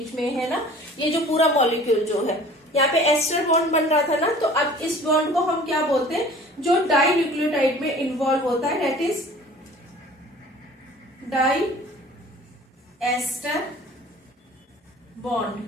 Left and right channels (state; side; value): normal; both; correlation 0.47